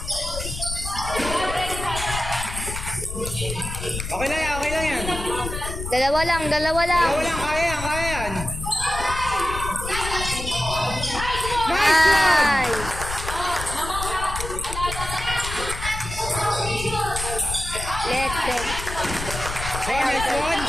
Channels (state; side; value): noise; left; rumble, 7 dB below the sound